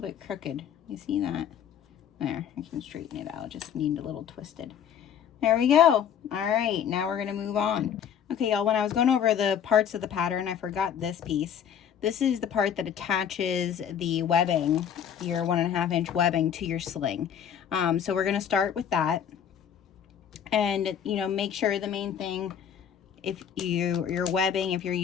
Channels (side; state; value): right; quieter; 8.6 dB